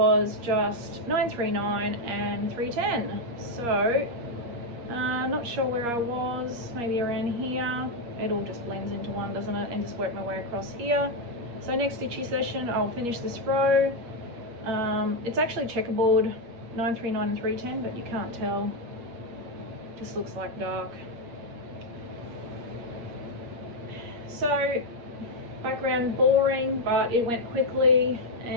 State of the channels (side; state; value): left; late; 8.5 ms